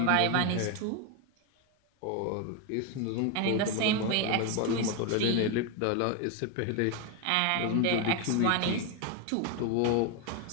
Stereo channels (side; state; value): both; different; correlation 0.01